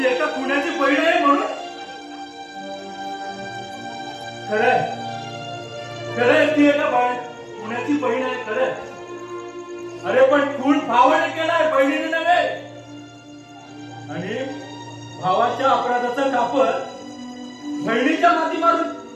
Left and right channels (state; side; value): identical; both; correlation 1.00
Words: एका पुण्याची बहीण आहे म्हणून? खरंय ती एका पुण्याची बहीण आहे खरंय. अरे पण खून भावाने केलाय, बहिणीने नव्हे. आणि भावाच्या अपराधाचं कापड बहिणीच्या माती मारून